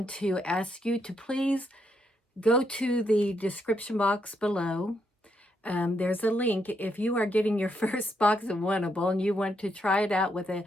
to ask you to please go to the description box below. There's a link. If you are getting your first box of Wantable and you want to try it out with a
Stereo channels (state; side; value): normal; both; correlation 0.77